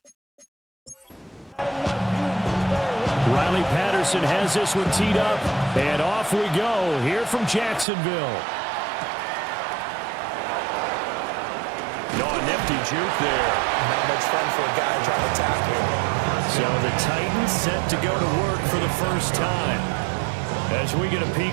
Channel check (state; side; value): drops out; left; at 7.9 s